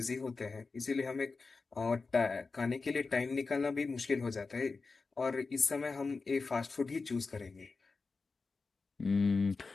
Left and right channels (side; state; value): right; quieter; 4.2 dB